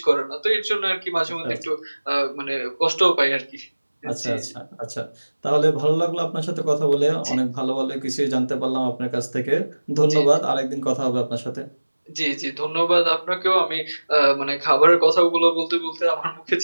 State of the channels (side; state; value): both; inverted; correlation -1.00